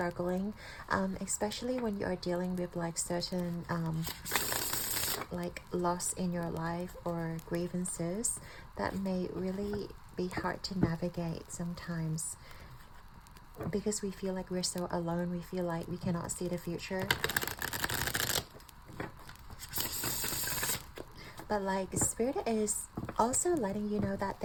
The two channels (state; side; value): identical; both; correlation 1.00